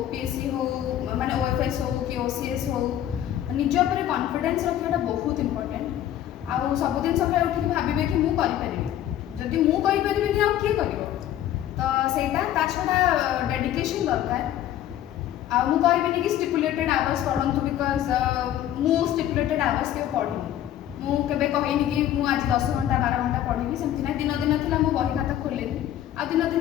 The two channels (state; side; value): quieter; right; 11.9 dB